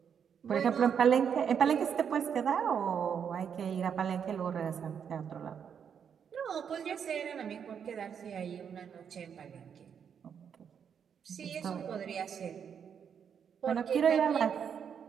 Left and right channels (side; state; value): left; quieter; 7.6 dB